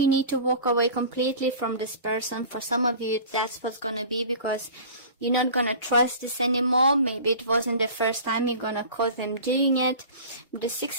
need to walk away completely from this person. For some of you, that's what's gonna be, because you're not gonna trust this anymore. Maybe it wasn't the first time you're gonna cause them doing it. The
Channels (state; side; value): inverted; both; correlation -0.39